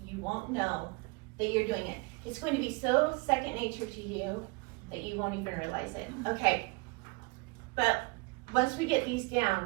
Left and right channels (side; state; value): left; quieter; 28.9 dB